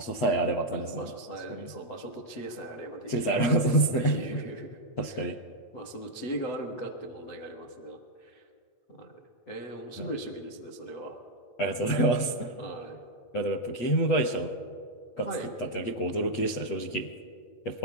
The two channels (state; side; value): late; right; 8.3 ms